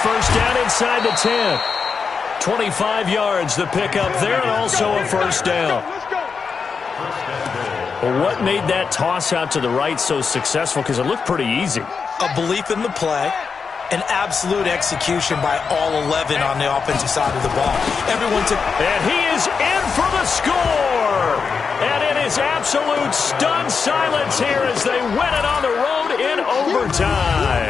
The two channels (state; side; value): quieter; right; 5.5 dB